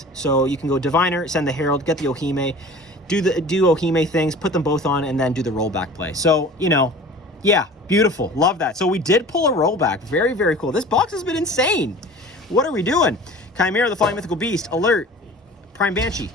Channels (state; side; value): normal; both; correlation 0.41